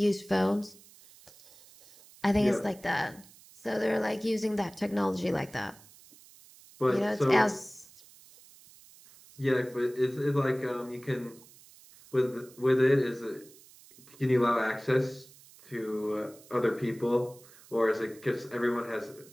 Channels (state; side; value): noise; right; hiss, 23 dB below the sound